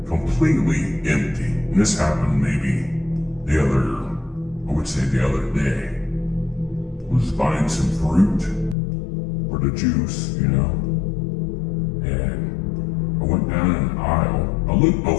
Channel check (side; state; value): right; drops out; at 8.8 s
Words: completely empty. And this happened maybe the other day. I was buying some fruit for the juice, you know, and I went down an aisle. I looked